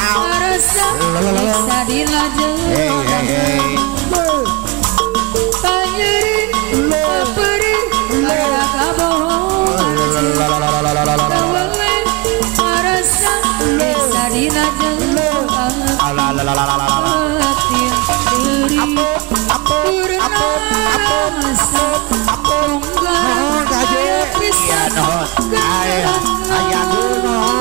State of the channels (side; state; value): left; quieter; 24.5 dB